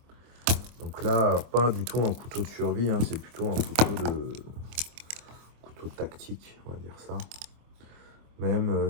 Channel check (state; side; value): late; left; 25 ms